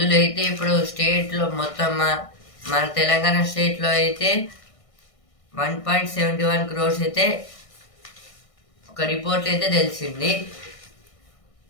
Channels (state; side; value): late; right; 1.6 ms